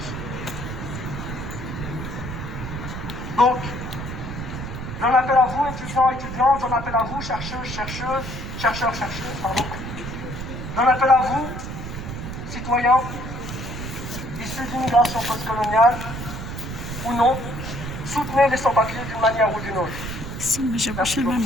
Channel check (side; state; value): right; noise; rumble, 7 dB below the sound